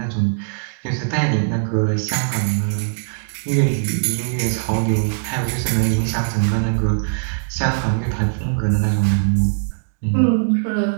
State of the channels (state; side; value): silent; left; digital silence